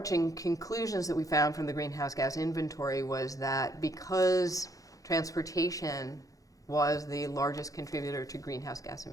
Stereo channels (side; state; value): right; late; 0.17 ms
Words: conclusions that we found from the greenhouse gas inventory was that because transportation was the largest contributor to greenhouse gas